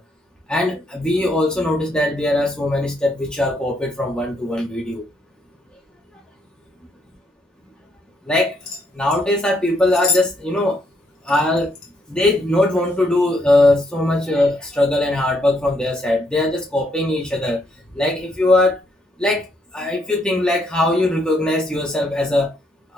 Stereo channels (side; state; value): both; normal; correlation 0.73